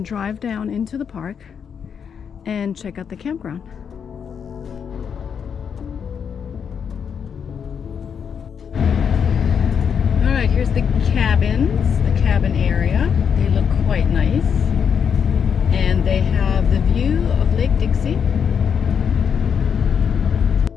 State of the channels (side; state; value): right; quieter; 7.2 dB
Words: drive down into the park and check out the campground. Alright, here's the cabins, the cabin area. They look quite nice. And they have the view of Lake Dixie.